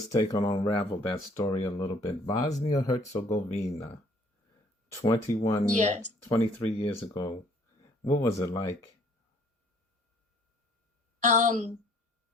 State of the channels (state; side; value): normal; both; correlation 0.59